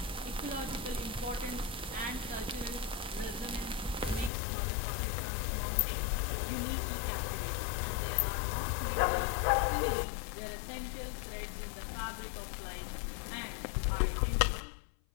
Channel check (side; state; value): right; drops out; at 4.3 s